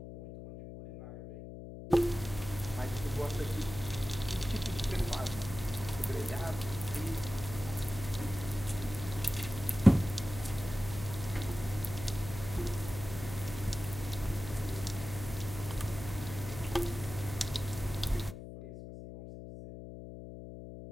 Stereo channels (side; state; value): left; noise; hum, 11 dB below the sound